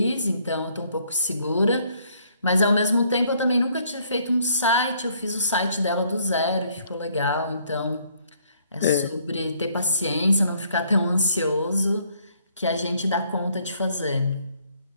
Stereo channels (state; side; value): inverted; both; correlation -0.65